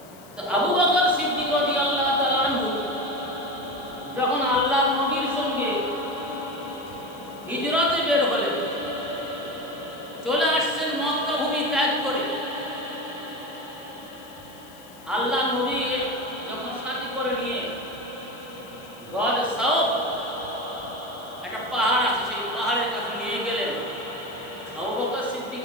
তো আবু বকর সিদ্দিক রাদিয়াল্লাহু তাআলা আনহু যখন আল্লাহর নবীর সঙ্গে হিজরতে বের হলেন, চলে আসছেন মক্কা ভূমি ত্যাগ করে, আল্লাহ নবী যখন সাথী করে নিয়ে গড় সাউফ একটা পাহাড় আছে, সেই পাহাড়ের কাছে নিয়ে গেলেন। আবু বকর সিদ্দিক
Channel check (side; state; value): left; noise; hiss, 23 dB below the sound